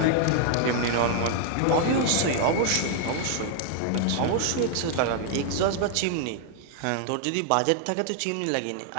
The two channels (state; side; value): different; both; correlation 0.00